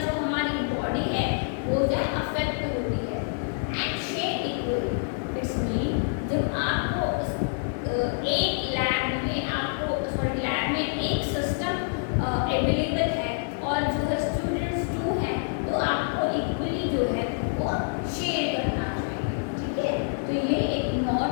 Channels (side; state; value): right; silent; digital silence